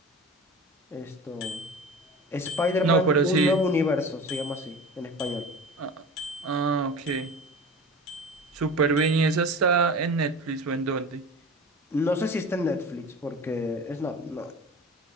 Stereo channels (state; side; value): normal; both; correlation 0.35